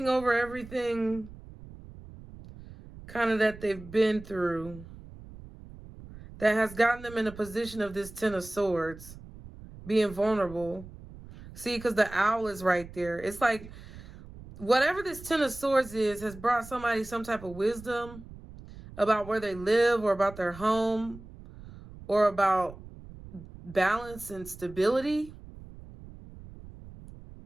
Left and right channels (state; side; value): noise; right; rumble, 17 dB below the sound